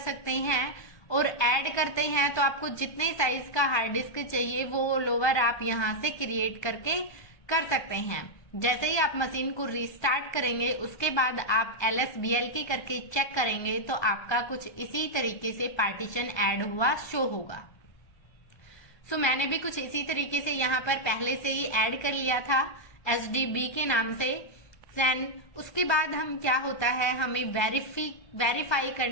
हैं। और ऐड करते हैं तो आपको जितने साइज का हार्ड डिस्क चाहिए वो लोअर आप यहाँ से क्रिएट करके कर सकते हैं। जैसे ही आप मशीन को रीस्टार्ट करेंगे उसके बाद आप LSBL करके चेक करेंगे तो आपका कुछ इसी तरीके से पार्टीशन ऐड हुआ शो होगा। सो मैंने भी कुछ इसी तरीके से यहाँ पर पहले से ही ऐड कर लिया था SDB के नाम से। देन उसके बाद हम क्या होता है, हमें वेरीफाई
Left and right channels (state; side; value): late; right; 1.3 ms